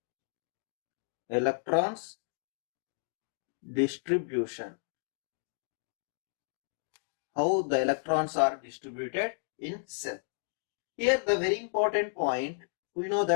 Electrons distribution. How the electrons are distributed in cell. Here the very important point, we know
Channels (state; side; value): silent; right; digital silence